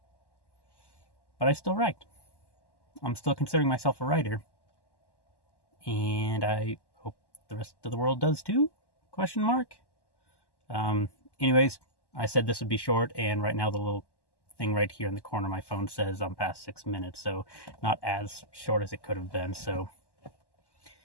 But I still write. I'm still considering myself a writer. And I hope the rest of the world does too? ? Anyways, I said this would be short, and right now the little thing right here in the corner of my phone says I'm past 6 minutes, so not as short as it could have been. So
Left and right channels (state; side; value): late; right; 1.1 ms